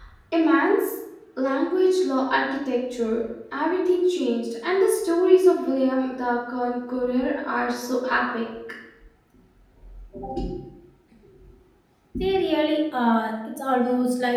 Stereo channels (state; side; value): identical; both; correlation 1.00